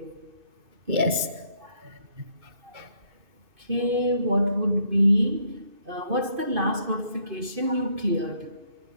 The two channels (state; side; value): late; left; 2.6 ms